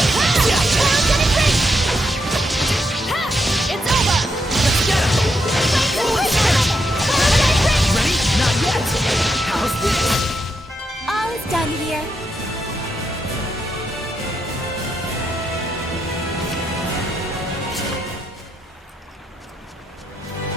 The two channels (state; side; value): normal; both; correlation 0.81